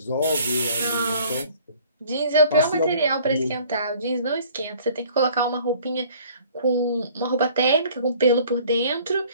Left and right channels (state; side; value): inverted; both; correlation -0.54